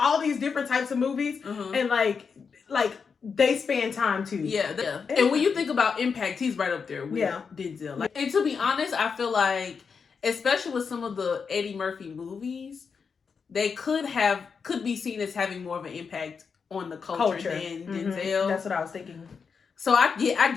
these different types of movies. And like they span time too. Yeah. And when you think about impact, he's right up there with Denzel. Like, and to be honest, I feel like, especially with some of the Eddie Murphy movies, they could be seen as having more of an impact on the culture than Denzel. That's what I was thinking. So I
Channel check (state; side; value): quieter; right; 5.7 dB